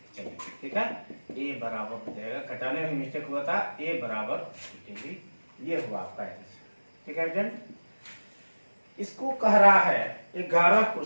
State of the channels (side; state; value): both; inverted; correlation -1.00